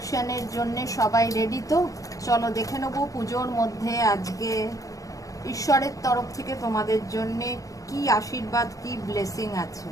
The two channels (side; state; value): right; late; 0.16 ms